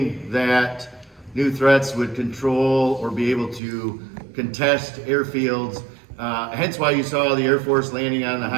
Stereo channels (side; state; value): left; drops out; at 3.6 s